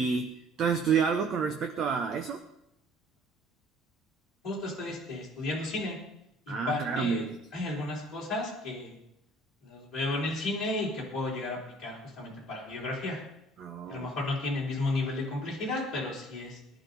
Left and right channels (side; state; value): both; normal; correlation 0.55